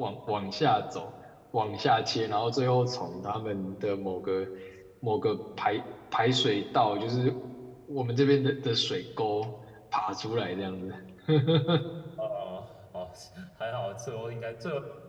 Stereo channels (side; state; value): both; identical; correlation 1.00